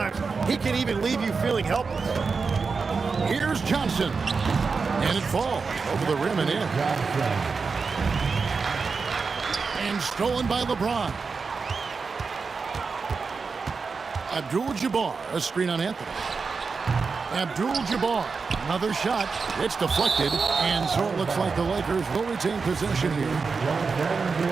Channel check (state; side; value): quieter; left; 4.8 dB